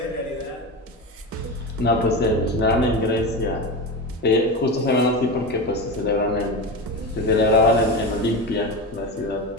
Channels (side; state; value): both; normal; correlation 0.21